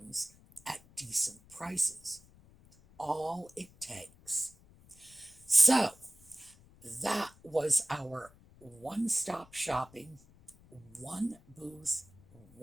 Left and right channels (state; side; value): noise; left; rumble, 25 dB below the sound